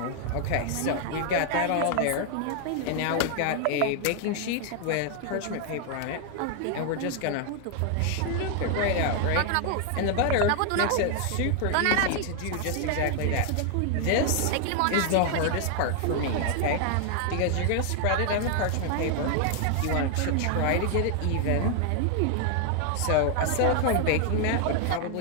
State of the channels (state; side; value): different; both; correlation 0.00